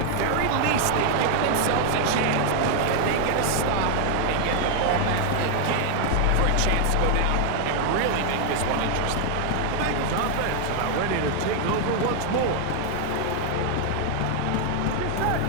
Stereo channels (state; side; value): different; both; correlation 0.00